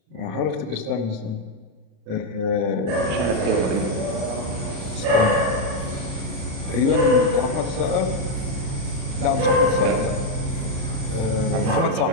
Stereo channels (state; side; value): late; left; 36 ms